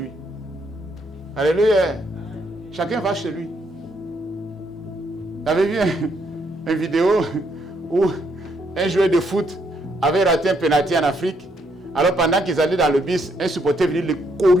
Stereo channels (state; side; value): normal; both; correlation 0.73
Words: Alléluia. Chacun va chez lui. J'avais vu une vidéo où un joueur de foot avait raté un penalty en Afrique. Alors pendant qu'ils allaient dans le bus, un supporter venait le